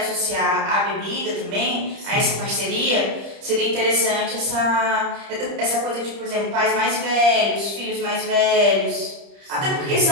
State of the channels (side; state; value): left; late; 30 ms